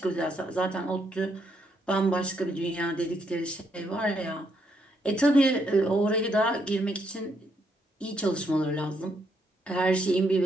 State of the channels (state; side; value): normal; both; correlation 0.75